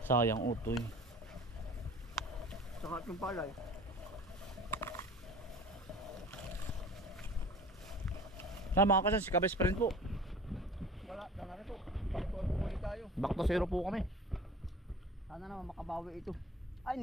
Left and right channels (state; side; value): normal; both; correlation 0.42